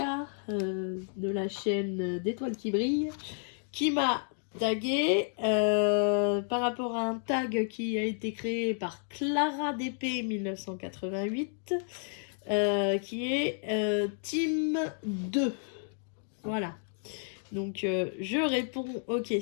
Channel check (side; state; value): right; silent; 57 dB below the other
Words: de la chaîne d'Étoiles qui brillent qui m'a tagué par rapport à un tag qui a été créé par Clara DP 1988 qui est Team 2. Voilà. Donc je réponds aux